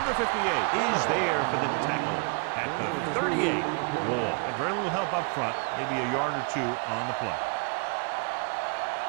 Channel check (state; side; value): quieter; left; 34.9 dB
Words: 58 is there for the tackle at the 38. Wall. And very little help up front. Maybe a yard or 2 on the play.